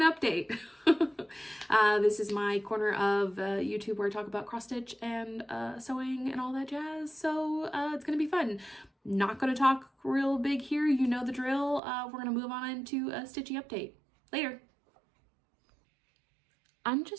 update. This is my corner of YouTube where I talk about cross-stitch and sewing and all that jazz. So it's going to be fun. Not going to talk real big here. You know the drill. We're going to move on into a stitchy update. Later. I'm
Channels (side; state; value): left; drops out; at 11.8 s